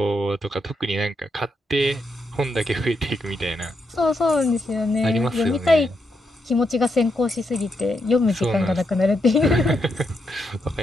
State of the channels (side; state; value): both; normal; correlation 0.81